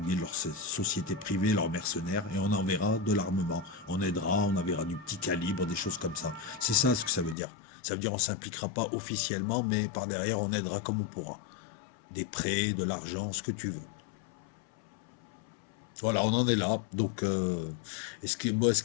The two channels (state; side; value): drops out; right; at 7.4 s